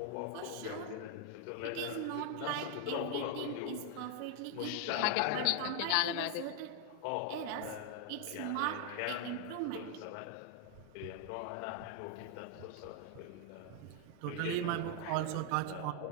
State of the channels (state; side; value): different; both; correlation 0.00